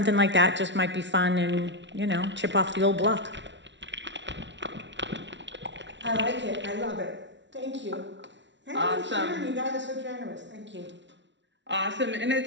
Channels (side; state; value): left; late; 0.52 ms